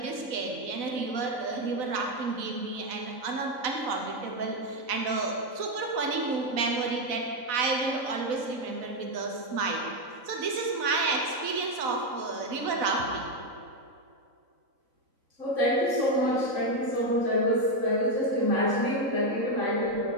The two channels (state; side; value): late; left; 4.0 ms